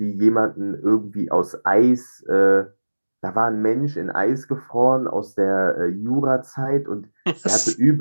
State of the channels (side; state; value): both; inverted; correlation -1.00